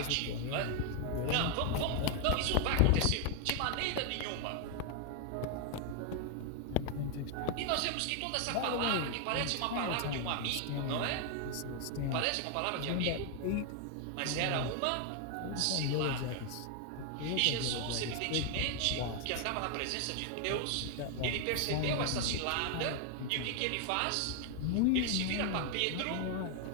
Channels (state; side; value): different; both; correlation 0.00